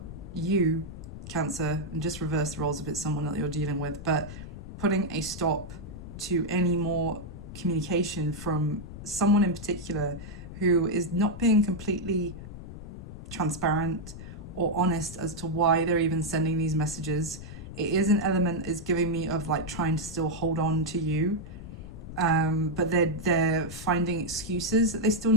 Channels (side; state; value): left; noise; rumble, 12 dB below the sound